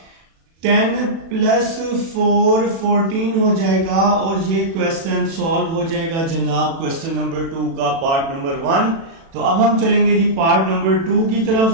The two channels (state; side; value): late; left; 36 ms